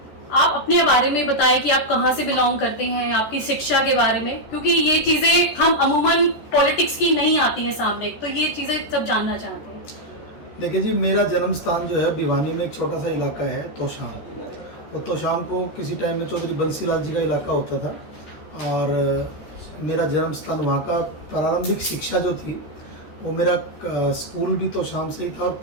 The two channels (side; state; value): right; late; 13 ms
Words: आप अपने बारे में बताएं कि आप कहां से बिलोंग करते हैं, आपकी शिक्षा के बारे में, क्योंकि ये चीजें हम अमूमन पॉलिटिक्स की नहीं आती हैं सामने, तो ये चीजें सब जानना चाहते हैं। देखिए जी, मेरा जन्म स्थान जो है भिवानी में एक छोटा सा इलाका है तोशाम। और तोशाम को किसी टाइम में चौधरी बंसीलाल जी का इलाका होता था, और मेरा जन्म स्थान वहाँ का प्रारंभिक शिक्षा जो थी वो मेरा स्कूल भी तोशाम से ही था, और